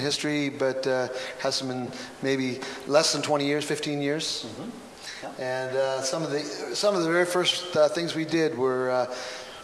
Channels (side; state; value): both; identical; correlation 1.00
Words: history, but has some maybe less than 20 years, 15 years. Mm-hmm. Yeah. And some of the very first things we did were